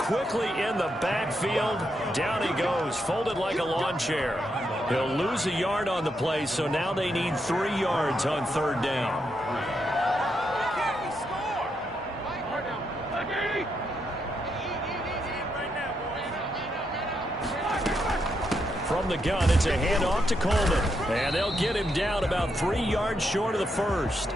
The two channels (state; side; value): normal; both; correlation 0.81